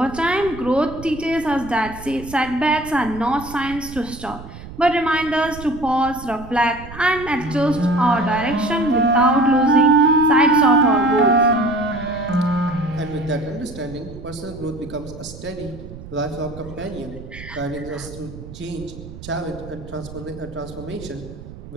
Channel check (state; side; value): noise; right; rumble, 14 dB below the sound